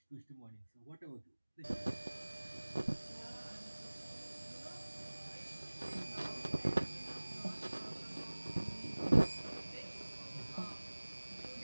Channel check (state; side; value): inverted; both; correlation -1.00